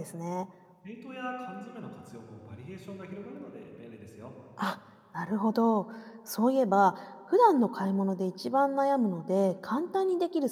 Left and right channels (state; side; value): identical; both; correlation 1.00